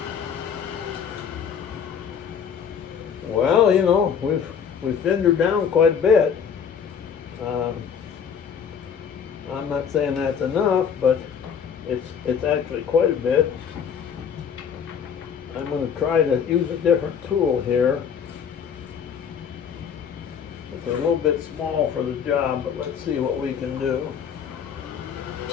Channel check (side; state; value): right; quieter; 7.4 dB